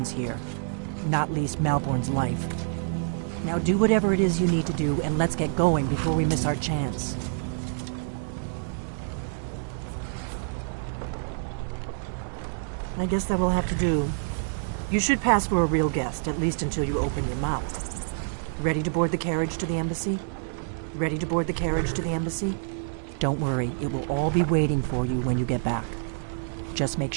here, not least Malborn's life. Now do whatever it is you need to do, and let's get going before we miss our chance. I guess that will have to do. You should pass for a real guest, at least until you open your mouth. Ready to board the carriage to the embassy? Ready to board the carriage to the embassy? Don't worry, it will all be waiting for you when you get back. Just make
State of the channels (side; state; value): left; silent; digital silence